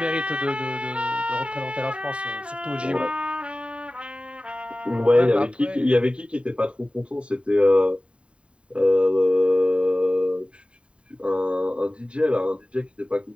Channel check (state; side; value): late; left; 0.058 ms